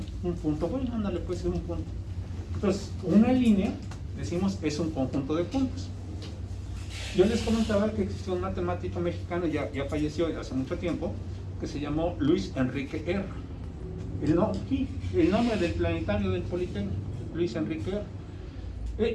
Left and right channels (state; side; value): identical; both; correlation 1.00